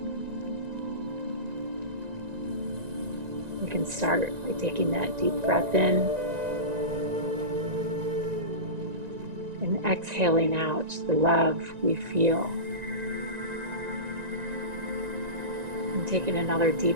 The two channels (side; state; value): left; late; 1.9 ms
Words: We can start by taking that deep breath in and exhaling out the love we feel. And taking another